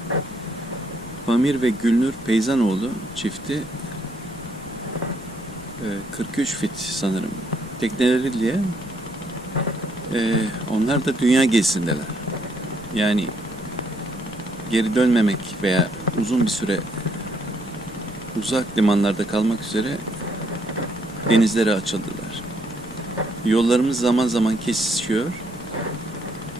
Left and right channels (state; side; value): noise; left; rumble, 18 dB below the sound